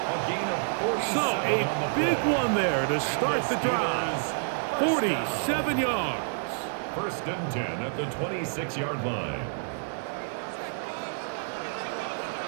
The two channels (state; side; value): silent; left; digital silence